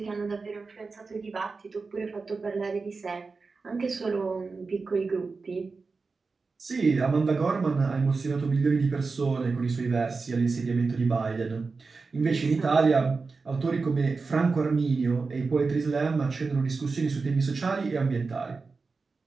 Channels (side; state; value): left; quieter; 4.3 dB